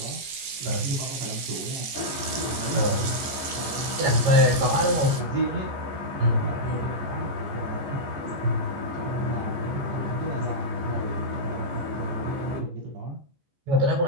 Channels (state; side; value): late; left; 14 ms